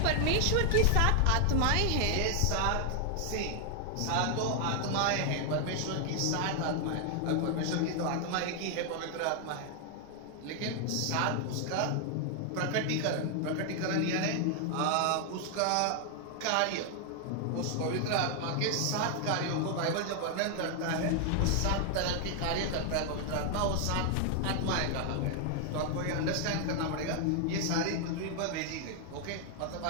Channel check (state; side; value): different; both; correlation 0.00